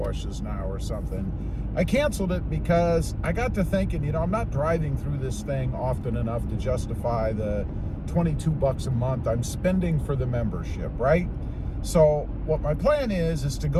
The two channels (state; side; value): identical; both; correlation 1.00